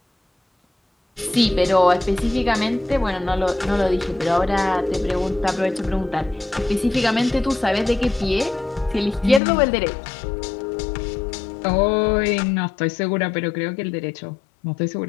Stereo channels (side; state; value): right; drops out; at 9.4 s